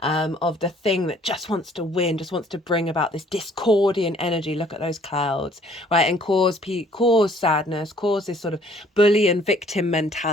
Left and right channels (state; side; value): normal; both; correlation 0.59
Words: the thing that just wants to win, just wants to bring about this discordian energy. Look at those clouds, right? And cause sadness, cause this sort of bully and victim